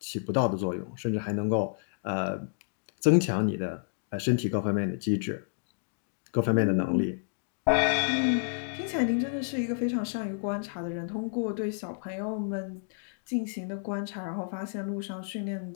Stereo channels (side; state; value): right; silent; digital silence